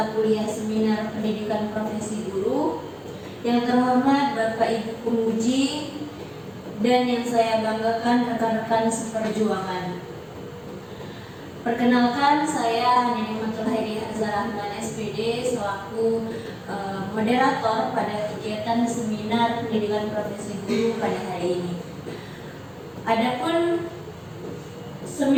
kuliah seminar pendidikan profesi guru. Yang terhormat Bapak Ibu penguji dan yang saya banggakan rekan-rekan seperjuangan. Perkenalkan, saya Nimatul Hairi Hazarahman SPD selaku moderator pada kegiatan seminar pendidikan profesi guru pada hari ini. Adapun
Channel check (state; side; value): identical; both; correlation 1.00